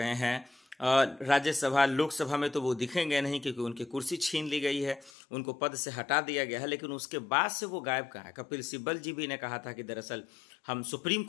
हैं? राज्यसभा, लोकसभा में तो वो दिखेंगे नहीं, क्योंकि उनकी कुर्सी छीन ली गई है, उनको पद से हटा दिया गया है। लेकिन उसके बाद से वो गायब कहाँ है? कपिल सिब्बल जी भी ने कहा था कि दरअसल हम सुप्रीम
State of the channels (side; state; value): right; drops out; at 5.1 s